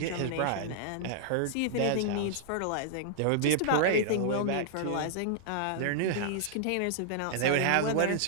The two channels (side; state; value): both; different; correlation -0.01